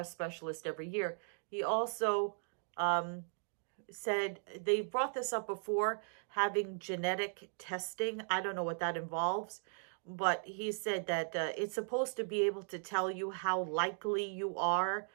specialist every year. He also said, they brought this up before, having genetic testing. I don't know what that involves, but he said that it's supposed to be able to tell you how likely you are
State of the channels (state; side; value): silent; left; 53 dB below the other